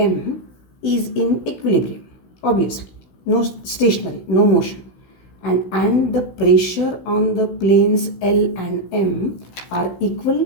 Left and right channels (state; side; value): late; right; 16 ms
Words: is in equilibrium, obviously, no stationary, no motion. And the pressure on the planes L and M are